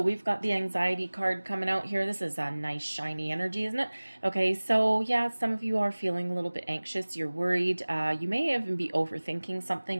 we've got the anxiety card coming out here. This is a nice shiny energy, isn't it? Okay, so yeah, some of you are feeling a little bit anxious. You're worried. You may even be overthinking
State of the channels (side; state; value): both; inverted; correlation -1.00